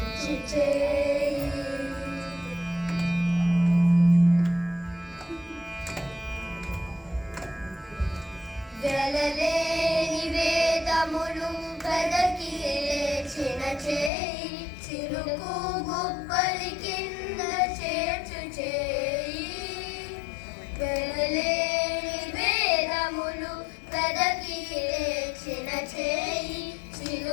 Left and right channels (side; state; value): right; drops out; at 14.1 s